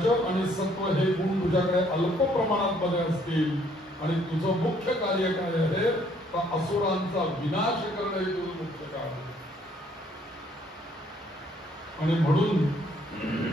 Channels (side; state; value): both; normal; correlation 0.65